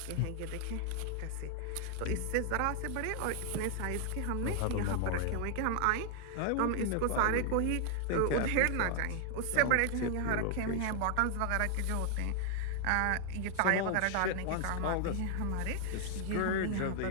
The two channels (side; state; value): both; different; correlation 0.00